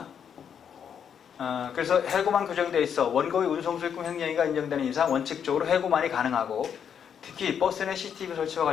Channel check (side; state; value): right; quieter; 8.0 dB